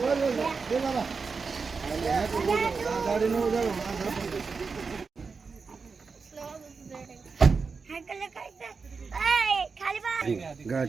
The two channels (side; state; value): left; quieter; 4.9 dB